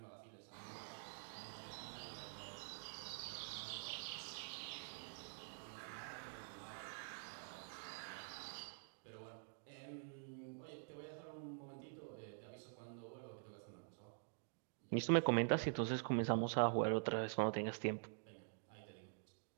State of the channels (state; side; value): silent; left; digital silence